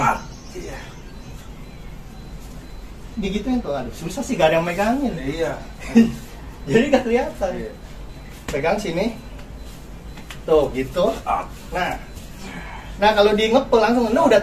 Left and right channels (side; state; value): both; identical; correlation 1.00